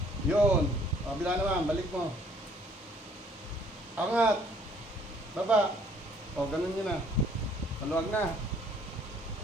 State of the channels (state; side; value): normal; both; correlation 0.61